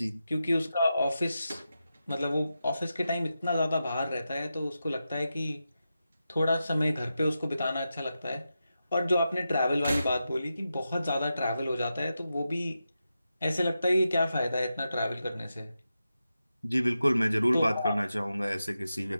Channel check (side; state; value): both; inverted; correlation -0.90